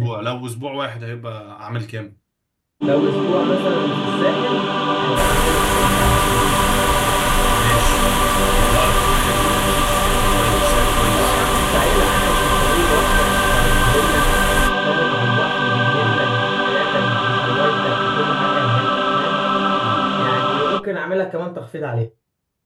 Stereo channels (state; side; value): identical; both; correlation 1.00